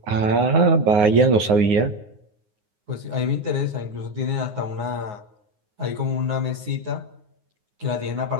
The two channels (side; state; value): left; late; 9.6 ms